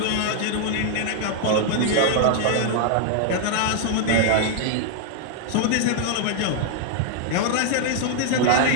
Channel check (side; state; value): both; different; correlation 0.00